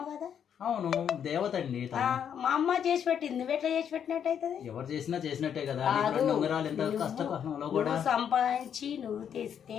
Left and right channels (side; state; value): right; quieter; 8.4 dB